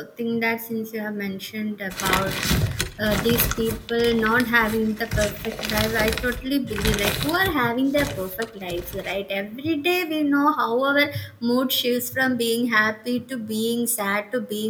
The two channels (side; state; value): both; identical; correlation 1.00